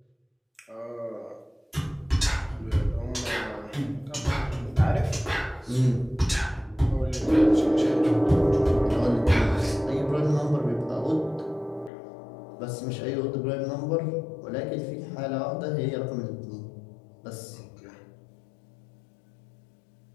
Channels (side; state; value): right; drops out; at 11.9 s